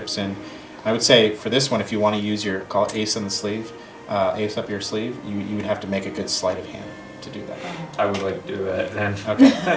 in. I would say for this one, if you want to use your call it ace on the sleeve, ace up your sleeve, you would have to make a good sleight of hand to do that. I would like to do that then. Okay.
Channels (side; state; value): both; identical; correlation 1.00